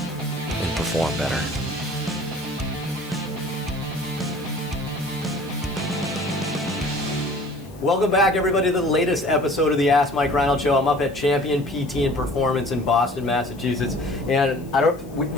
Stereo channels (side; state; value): left; noise; hiss, 25 dB below the sound